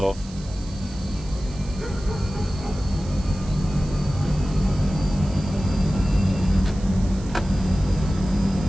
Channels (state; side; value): noise; right; hiss, 20 dB below the sound